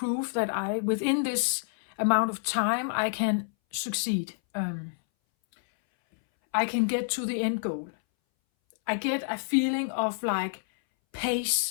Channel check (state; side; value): silent; right; 59 dB below the other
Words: that within this amount of time, I can succeed. I can get to the end goal. I get a feeling of like